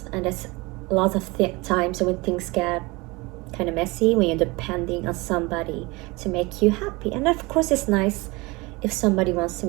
and that's a lot of times when things get kind of messy, when you're depending on somebody to make you happy. And of course it's nice if somebody wants to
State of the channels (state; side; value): quieter; left; 24.2 dB